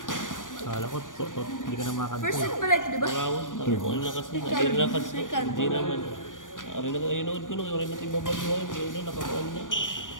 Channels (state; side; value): late; right; 0.88 ms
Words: Kala ko, hindi ka na makakanta. First set pala ito, di ba? Marawon, ano na kasi, hindi na kasi, hindi naman. Ari na kayo nood ko nung yung natin babaluhan, kaya na nakakuan na.